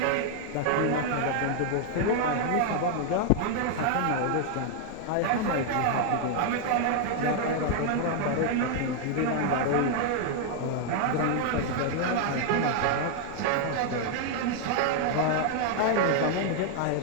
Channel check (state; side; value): different; both; correlation 0.00